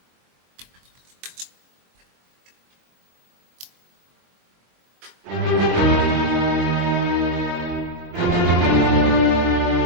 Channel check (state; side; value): late; left; 22 ms